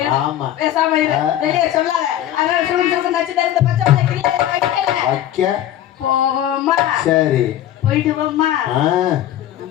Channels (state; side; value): quieter; right; 12.0 dB